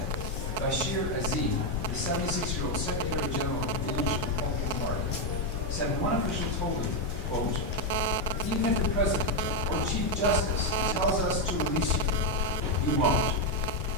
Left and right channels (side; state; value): both; normal; correlation 0.04